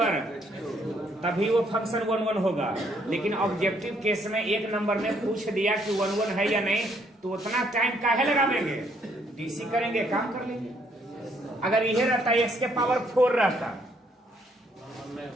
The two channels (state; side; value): normal; both; correlation 0.69